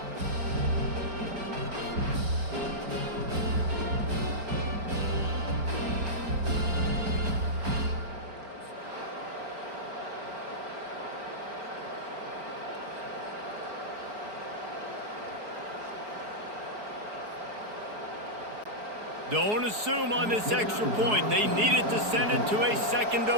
Don't assume on this extra point. They needed to send it to a second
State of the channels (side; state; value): left; late; 4.7 ms